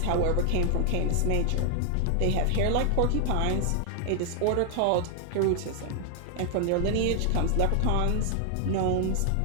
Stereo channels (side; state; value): both; different; correlation 0.00